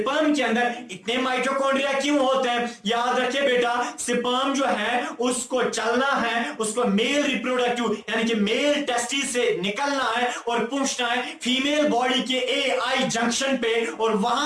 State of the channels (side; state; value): both; identical; correlation 1.00